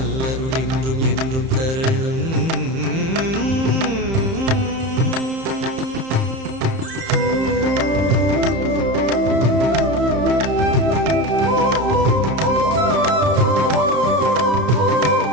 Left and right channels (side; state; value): left; late; 31 ms